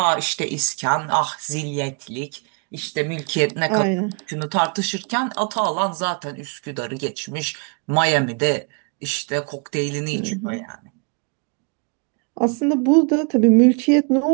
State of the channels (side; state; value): left; quieter; 35.1 dB